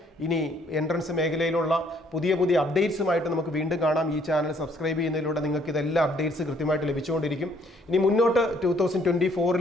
ഇനി എൻട്രൻസ് മേഖലയിലുള്ള പുതിയ പുതിയ അപ്ഡേറ്റ്സുമായിട്ട് നമുക്ക് വീണ്ടും കാണാം. ഈ ചാനൽ സബ്സ്ക്രൈബ് ചെയ്യുന്നതിലൂടെ നിങ്ങൾക്ക് ഇതെല്ലാം അപ്ഡേറ്റ്സ് കൃത്യമായിട്ട് ലഭിച്ചുകൊണ്ടിരിക്കും. ഇനി മുന്നോട്ട്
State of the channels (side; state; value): both; normal; correlation 0.64